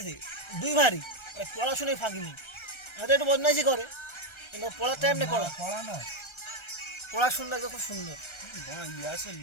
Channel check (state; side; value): late; right; 1.3 ms